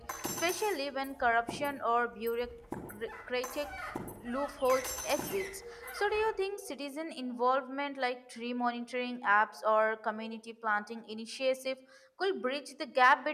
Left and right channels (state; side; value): identical; both; correlation 1.00